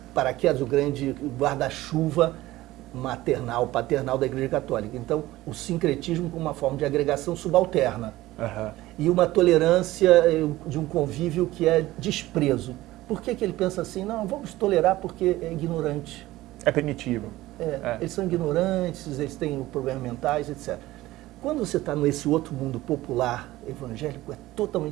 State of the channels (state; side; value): quieter; left; 17.1 dB